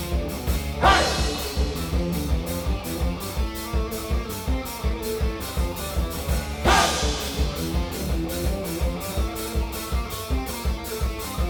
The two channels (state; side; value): identical; both; correlation 1.00